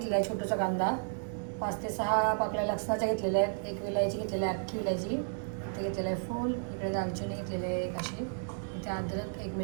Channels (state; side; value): silent; left; digital silence